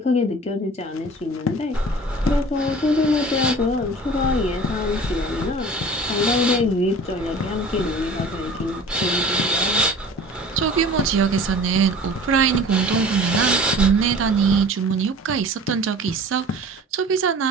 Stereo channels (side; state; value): both; normal; correlation 0.43